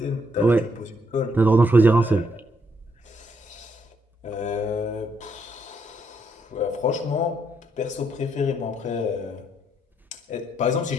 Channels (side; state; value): both; normal; correlation 0.75